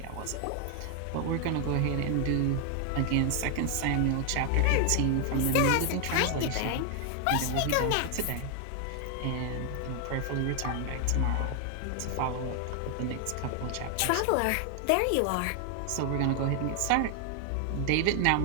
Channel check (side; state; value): both; different; correlation 0.00